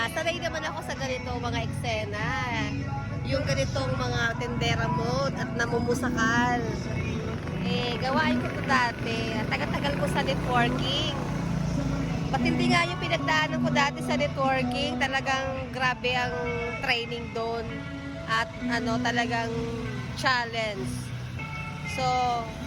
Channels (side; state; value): both; identical; correlation 1.00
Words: Sanay naman ako sa ganito mga eksena. Yung ganitong mga tendera mode at namumusakal. Gawain ko ito dati. Tagal-tagal ko sa networking. Patindi nga yung pinagdaanan ko dati sa networking. Talagang grabe ang training doon. At talagang challenge. So,